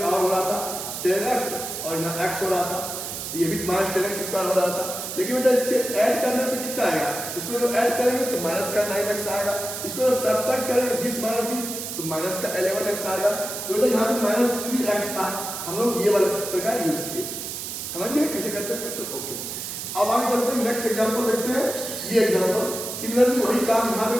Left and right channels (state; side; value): noise; right; hiss, 6 dB below the sound